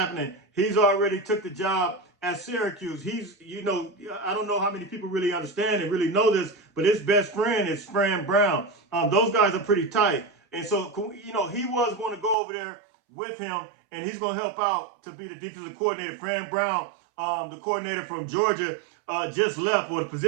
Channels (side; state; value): left; drops out; at 12.4 s